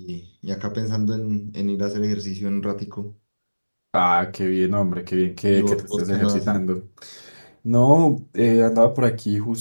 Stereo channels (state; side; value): inverted; both; correlation -1.00